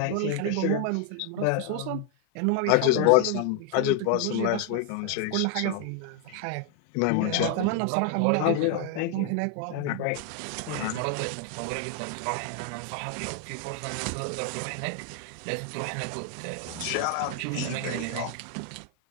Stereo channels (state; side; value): different; both; correlation 0.00